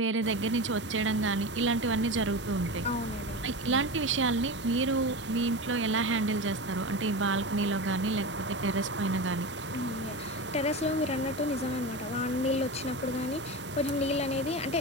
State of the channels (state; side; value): normal; both; correlation 0.24